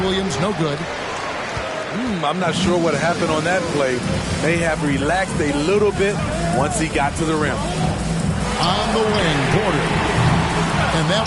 no good. I'm not sure what happened on that play. May have relaxed a little bit once he got to the rim. On the wing, Porter. And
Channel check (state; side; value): identical; both; correlation 1.00